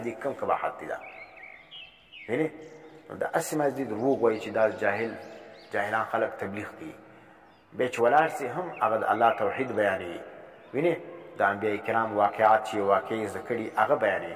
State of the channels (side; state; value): both; identical; correlation 1.00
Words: دې کم قباحت دی. دا وینې؟ نو دا هسې مازدي دروغ وایي چې دا جاهلان خلک تبلیغ کوي، بیا چې ولاړ سي هم هغه د الله توحید بیانوي. وینې؟ د انبیاء کرام واقعات چې واقعي زده کړي هغه بیانوي.